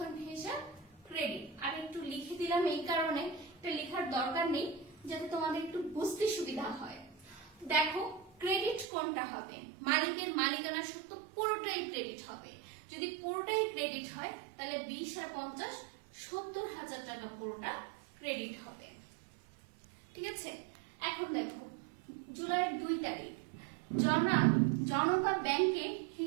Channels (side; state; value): left; drops out; at 8.8 s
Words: হিসাব ক্রেডিট। আর একটু লিখে দিলাম এই কারণে, এটা লেখার দরকার নেই, যাতে তোমাদের একটু বুঝতে সুবিধা হয়। দেখো ক্রেডিট কোনটা হবে? মালিকের মালিকানা সত্ত্ব পুরোটাই ক্রেডিট হবে। যদি পুরোটাই ক্রেডিট হয় তাহলে 20 আর 50 70,000 টাকা পুরোটা ক্রেডিট হবে। ঠিক আছে, এখন দেখো জুলাইয়ের 2 তারিখ জনতা ব্যাংকে